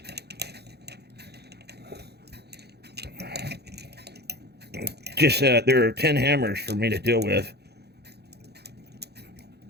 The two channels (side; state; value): left; late; 0.48 ms